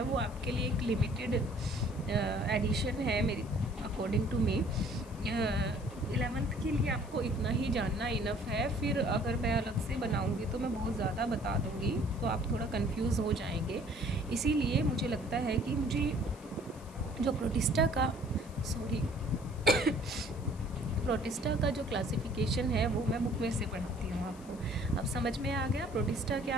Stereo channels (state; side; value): noise; left; hiss, 23 dB below the sound